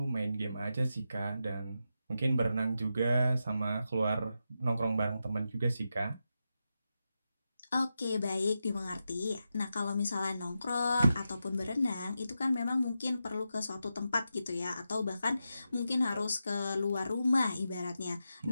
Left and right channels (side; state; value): both; inverted; correlation -0.88